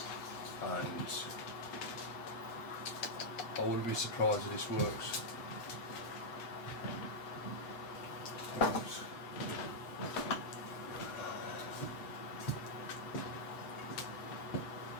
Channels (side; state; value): right; late; 7.8 ms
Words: And I wouldn't be surprised if this works.